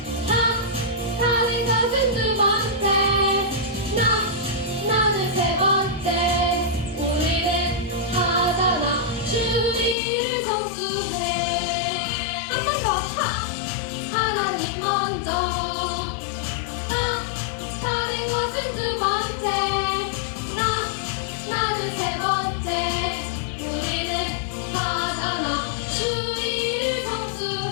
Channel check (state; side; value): drops out; right; at 10.0 s